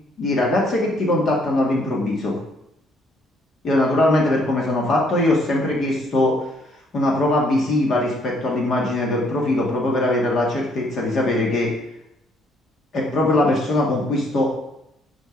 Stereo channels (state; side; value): normal; both; correlation 0.67